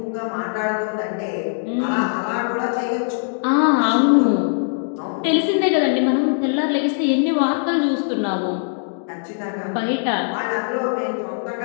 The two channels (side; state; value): right; silent; digital silence